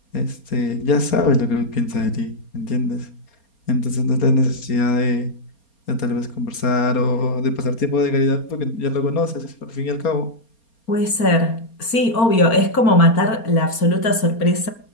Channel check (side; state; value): right; late; 4.3 ms